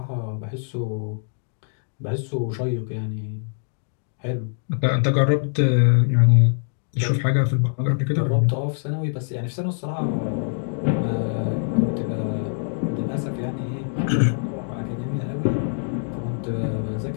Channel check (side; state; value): right; silent; digital silence